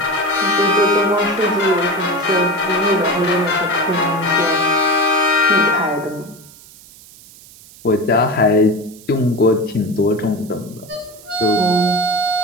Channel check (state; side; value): noise; right; hiss, 22 dB below the sound